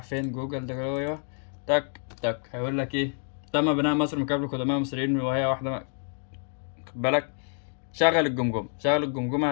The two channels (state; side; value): silent; right; 59 dB below the other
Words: فين جوجل ده جوه، تك تك هيقول لك ايه، تم بناء مصر من قبل القدماء المصريين وهي واحده خد بالك. شغل الجمجمه